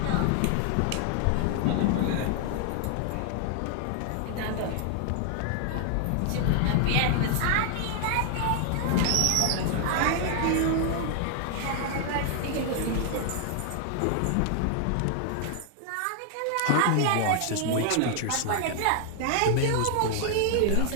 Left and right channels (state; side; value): different; both; correlation 0.00